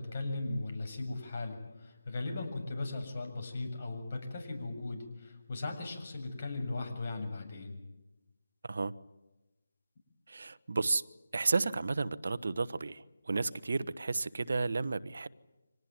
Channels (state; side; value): inverted; both; correlation -0.92